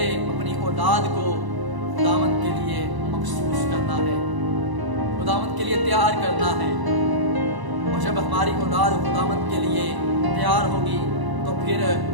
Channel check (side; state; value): left; late; 1.0 ms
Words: اپنی اولاد کو خداوند کے لیے مخصوص کرنا ہے، خداوند کے لیے تیار کرنا ہے۔ اور جب ہماری اولاد خداوند کے لیے تیار ہوگی تو پھر